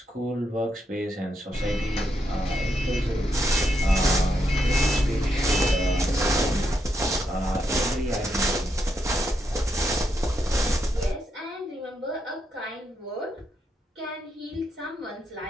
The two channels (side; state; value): both; normal; correlation 0.81